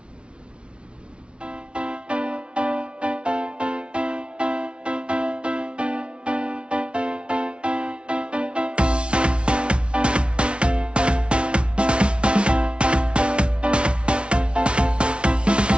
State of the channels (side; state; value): left; late; 0.058 ms